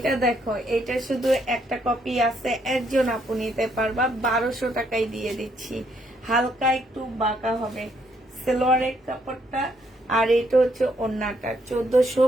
দেখো, এটা শুধু একটা কপি আছে, একজন আপু নিতে পারবা, 1200 টাকায় দিয়ে দিচ্ছি। হালকা একটু বাঁকা হবে সালোয়ারের কাপড়টা, আর এটা হচ্ছে ওড়নাটা।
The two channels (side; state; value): both; normal; correlation 0.72